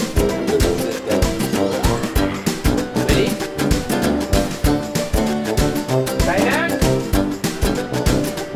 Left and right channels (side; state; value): both; identical; correlation 1.00